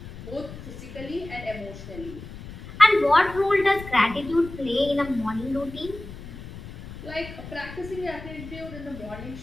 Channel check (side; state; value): left; noise; rumble, 13 dB below the sound